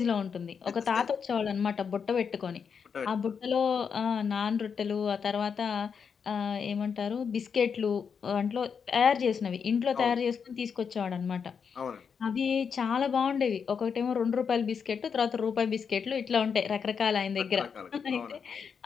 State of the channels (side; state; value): right; quieter; 6.5 dB